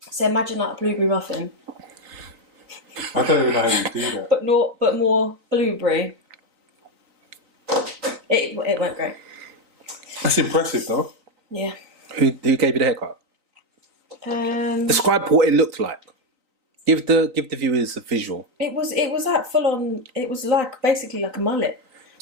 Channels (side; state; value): left; late; 3.9 ms